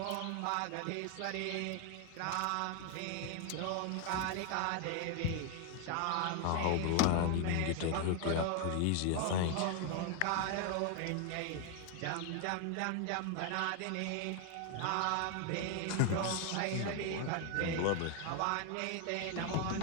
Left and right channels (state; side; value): different; both; correlation 0.00